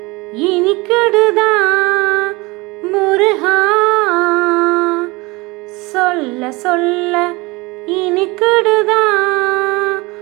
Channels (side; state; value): left; quieter; 24.0 dB